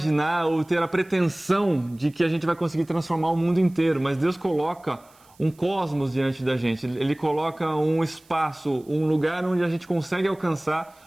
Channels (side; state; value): right; noise; hiss, 30 dB below the sound